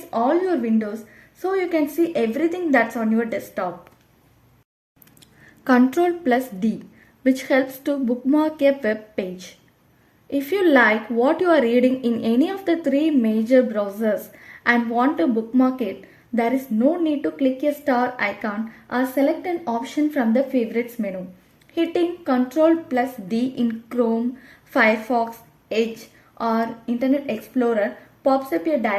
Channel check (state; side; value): identical; both; correlation 1.00